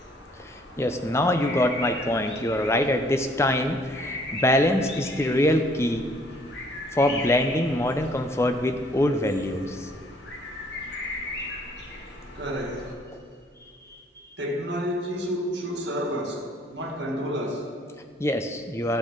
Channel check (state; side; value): normal; both; correlation 0.61